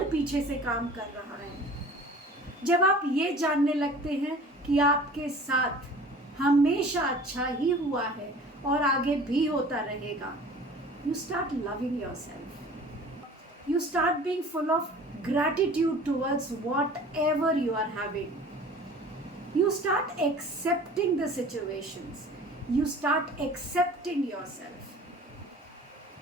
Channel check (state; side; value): normal; both; correlation 0.45